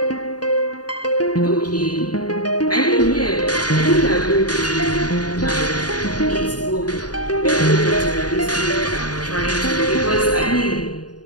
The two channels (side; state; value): right; late; 0.69 ms